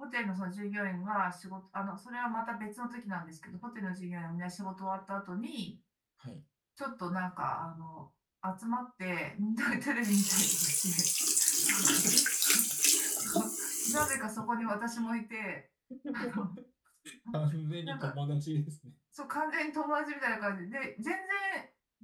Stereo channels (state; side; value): identical; both; correlation 1.00